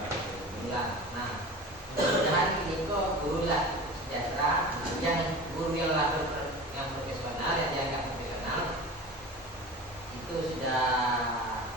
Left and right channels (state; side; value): normal; both; correlation 0.35